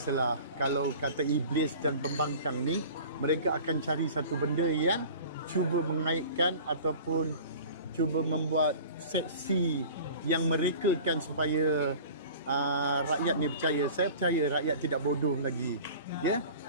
kalau kata iblis dan pembangkang ni, mereka akan cari satu benda yang cuba mengaitkan ataupun cuba membuat seksi yang merekakan supaya rakyat ni percaya. Saya percaya rakyat tidak bodoh lagi. Ya.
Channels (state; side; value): inverted; both; correlation -0.42